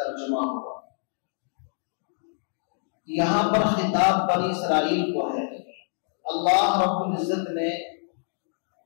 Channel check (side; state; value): right; silent; digital silence